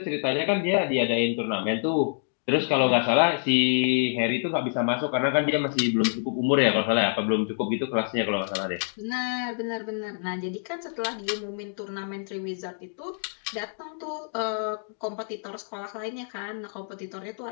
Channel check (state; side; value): silent; right; digital silence